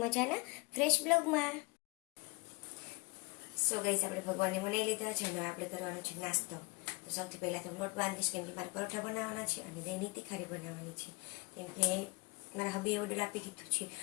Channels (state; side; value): quieter; right; 28.1 dB